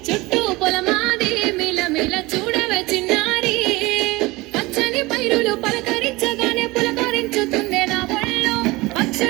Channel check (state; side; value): quieter; left; 21.6 dB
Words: చుట్టూ పొలమాది మిలమిల చూడవే చిన్నారి పచ్చని పైరులు పలకరించగానే పులకరించుతుందే నా ఒళ్ళు